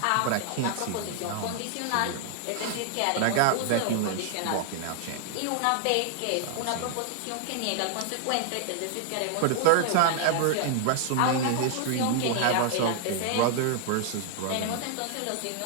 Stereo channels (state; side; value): different; both; correlation 0.00